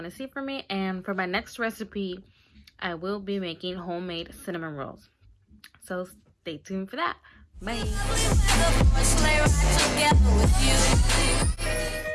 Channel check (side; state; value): both; identical; correlation 1.00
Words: to see from me. And for my next recipe, I will be making homemade cinnamon rolls. So stay tuned for that. Bye.